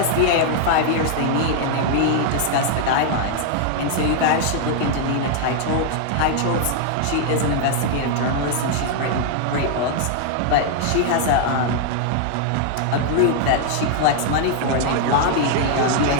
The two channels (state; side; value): different; both; correlation 0.00